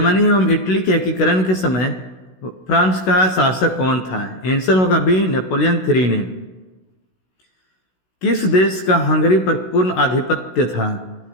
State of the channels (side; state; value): right; late; 16 ms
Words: एवं इटली के एकीकरण के समय फ्रांस का शासक कौन था? आंसर होगा बी नेपोलियन 3 ने। किस देश का हंगरी पर पूर्ण आधिपत्य था?